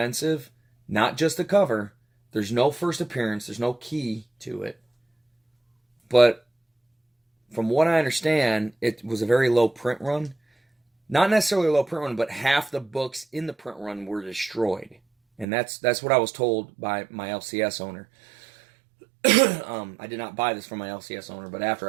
not just the cover. There's no first appearance. There's no key to it. But from what I understand, it was a very low print run. Not necessarily a low print run, but half the books in the print run were destroyed. And that's what I was told by my LCS owner. I did not buy this from my LCS owner, but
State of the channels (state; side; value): drops out; left; at 15.5 s